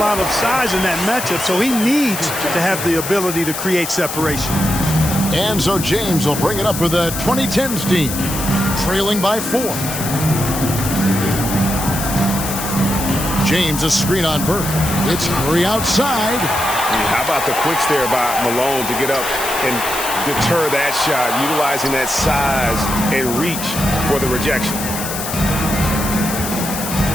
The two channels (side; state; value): left; noise; hiss, 6 dB below the sound